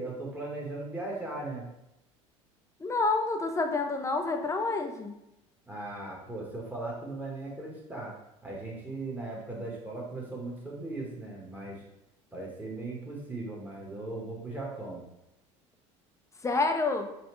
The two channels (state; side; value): normal; both; correlation 0.51